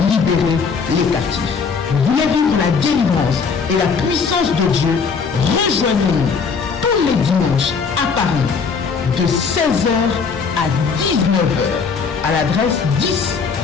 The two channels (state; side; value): quieter; right; 5.5 dB